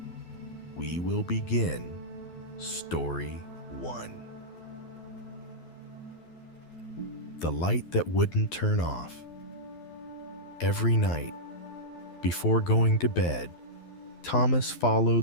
we will begin Story 1. The light that wouldn't turn off. Every night, before going to bed, Thomas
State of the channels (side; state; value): right; late; 12 ms